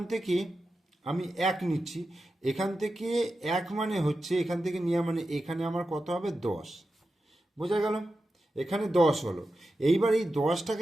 থেকে আমি 1 নিচ্ছি, এখান থেকে 1 মানে হচ্ছে এখান থেকে নেওয়া মানে এখানে আমার কত হবে? 10। বোঝা গেল? এখানে 10 হলো। এইবার এই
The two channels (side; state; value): both; normal; correlation 0.91